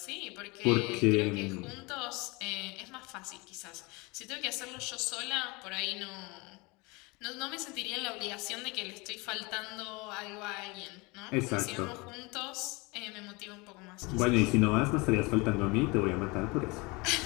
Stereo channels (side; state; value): right; quieter; 26.2 dB